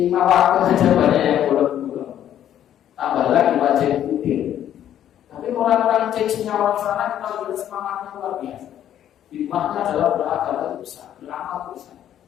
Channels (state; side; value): quieter; right; 10.8 dB